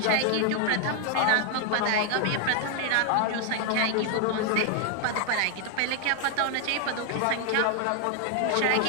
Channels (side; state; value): both; different; correlation 0.00